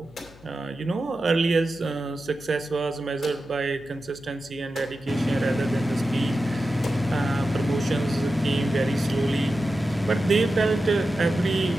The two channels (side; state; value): left; noise; hum, 24 dB below the sound